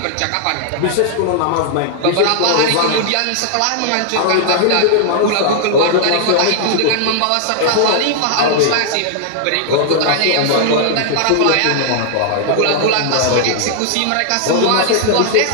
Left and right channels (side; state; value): both; different; correlation 0.00